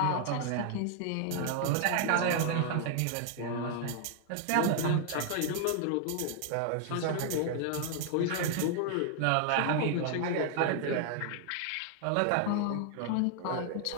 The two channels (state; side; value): different; both; correlation 0.00